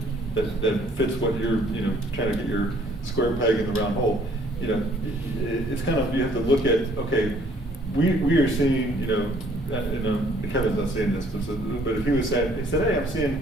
that fits what you're trying to get your square peg in the round hole, it's kind of, you have to look at, okay, we are seeing, Kevin's not saying this, but if he said, hey, I'm seeing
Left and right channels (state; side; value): normal; both; correlation 0.60